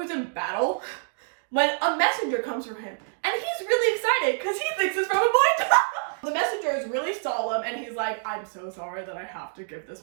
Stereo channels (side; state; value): left; silent; digital silence